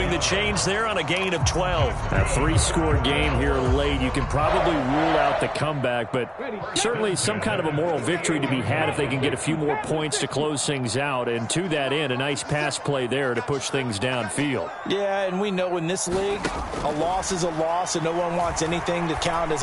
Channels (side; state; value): both; identical; correlation 1.00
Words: the chains there on a gain of 12. A 3-score game here late. You can probably rule out the comeback, but certainly some kind of a moral victory to be had if they can get a few more points to close things out. And to that end, a nice pass play there to push things downfield. Yeah, and we know in this league, a loss is a loss, and no one wants anything to count as